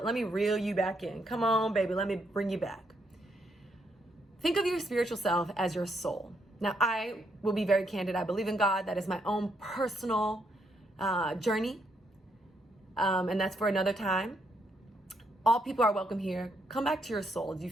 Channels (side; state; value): both; normal; correlation 0.76